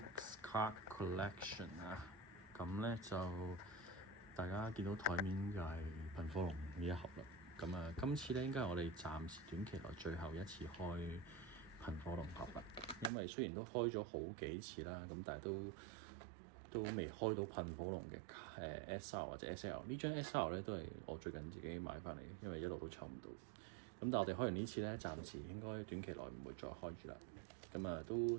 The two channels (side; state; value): left; drops out; at 13.1 s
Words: Card Collection 啊！咁咧就大家見到台面就係噴火龍呢一盒啦。咁啊，今次咧應該係我哋暫時短期內最後一次開噴火龍盒啦。因為雖然都開咗好幾次啦，咁但係都未開到噴火龍嘅SR 或者 SL。呢張 SR 咧都係我最近自己買翻嚟，因為一路都抽唔到。咁但係我哋開完呢次咧，暫時應該短期內唔會再開住啦。咁啊，都